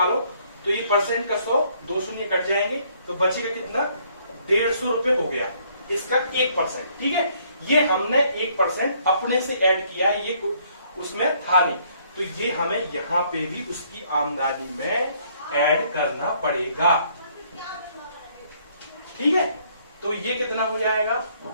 तो ये परसेंट का 100, 2 शून्य कट जाएंगे, तो बचेगा कितना, 150 रुपए हो गया इसका 1%, ठीक है। ये हमने 1% अपने से ऐड किया, ये उसमें था नहीं, तो ये हमें यहां पे भी उसकी आमदनी में ऐड करना पड़ेगा, ठीक है। तो ये कितना हो जाएगा,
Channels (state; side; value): inverted; both; correlation -0.65